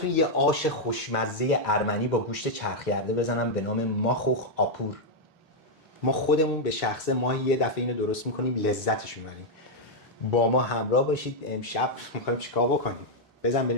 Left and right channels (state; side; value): normal; both; correlation -0.01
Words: یه آش خوشمزه ارمنی با گوشت چرخیرده بزنم به نام ماخوخ آپور. ما خودمون به شخصه ماهی یه دفعه اینو درست میکنیم، لذتش میبریم. با ما همراه باشید. امشب میخوایم چیکار بکنیم؟ بزن